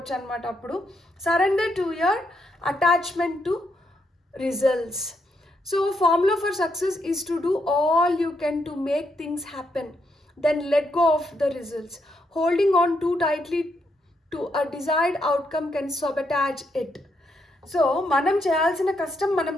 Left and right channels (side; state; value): both; normal; correlation 0.78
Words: అనమాట. అప్పుడు surrender to your attachment to results. So formula for success is to do all you can to make things happen, then let go of the results. Holding on too tightly to a desired outcome can sabotage it. So మనం చేయాల్సిన కష్టం మనం